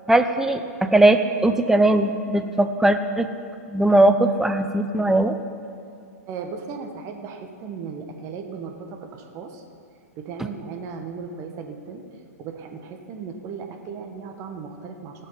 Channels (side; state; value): both; normal; correlation 0.75